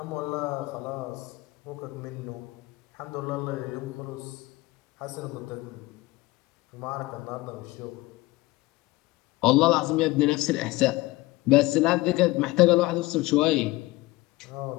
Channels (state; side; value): quieter; right; 20.4 dB